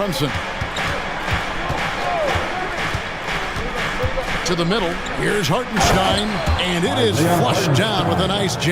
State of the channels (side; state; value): both; identical; correlation 1.00